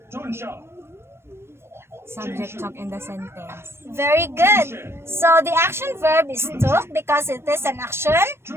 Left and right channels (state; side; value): late; left; 0.12 ms